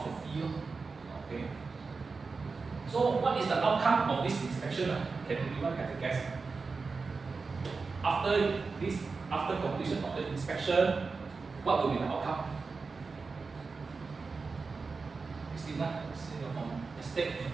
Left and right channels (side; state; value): left; quieter; 4.4 dB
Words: the fee. Okay. So what is the outcome of this inspection? Can anyone have a guess? After completion of the inspection, what will be the outcome? Christina, from estate.